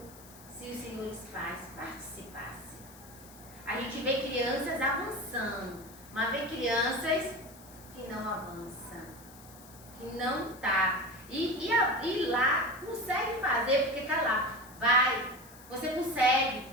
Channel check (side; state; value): left; noise; hiss, 20 dB below the sound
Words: se os senhores pais participassem. A gente vê crianças avançando, mas vê crianças que não avançam, que não tá. E lá consegue fazer porque tá lá, vai. Você